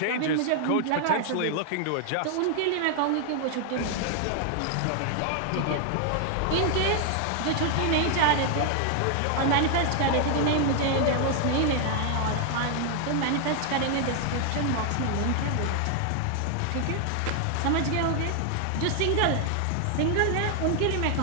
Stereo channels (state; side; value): different; both; correlation 0.00